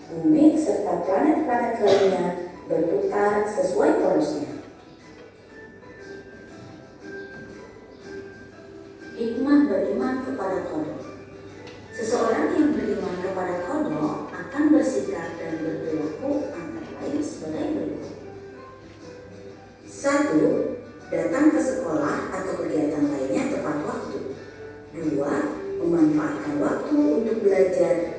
Bumi serta planet-planet lainnya berputar sesuai porosnya. Hikmah beriman kepada kodok. Seseorang yang beriman kepada kodok akan bersikap dan berperilaku antara lain sebagai berikut. 1. Datang ke sekolah atau kegiatan lainnya tepat waktu. 2. Memanfaatkan waktu untuk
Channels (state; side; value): identical; both; correlation 1.00